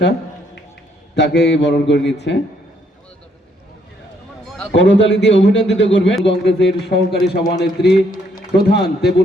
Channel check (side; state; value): both; normal; correlation 0.70